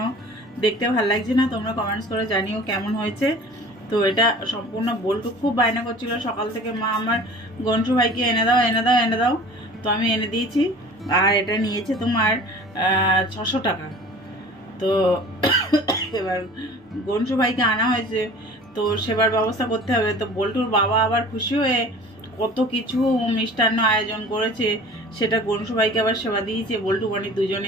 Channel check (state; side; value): normal; both; correlation 0.44